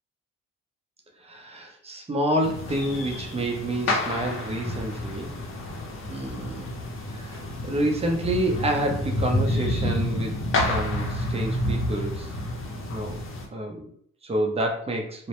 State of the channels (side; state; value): both; normal; correlation 0.48